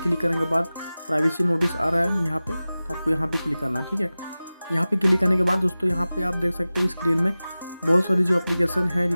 करने के बाद प्राइवेसी नोटिस आ रहा है यहाँ पे, तो आपको यहाँ पे क्लिक करना है। ठीक है, यहाँ पे क्लिक करने के बाद दोस्तों यहाँ पे आप देख सकते हैं स्क्रीन में बहुत सारी जो एप्लीकेशन है,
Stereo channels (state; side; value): inverted; both; correlation -0.97